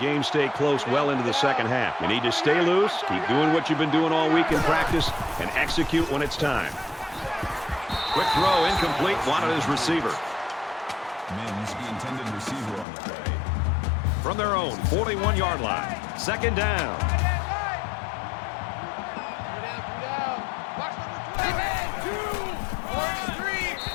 stay close well into the second half. You need to stay loose, keep doing what you've been doing all week in practice, and execute when it's time. Quick throw, incomplete, wanted his receiver. Mims, the intended receiver on the play. From their own 41-yard line. 2nd down.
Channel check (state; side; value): drops out; right; at 12.9 s